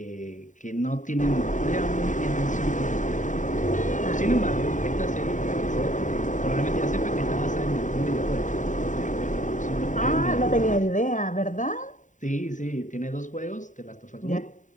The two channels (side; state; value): right; late; 0.36 ms